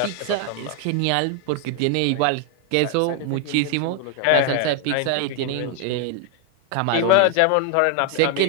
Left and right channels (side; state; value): both; different; correlation 0.00